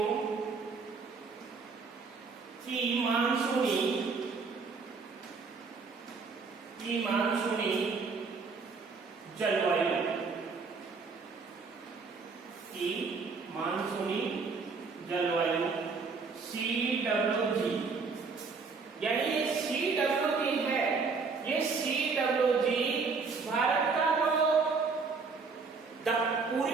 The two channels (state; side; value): quieter; left; 4.7 dB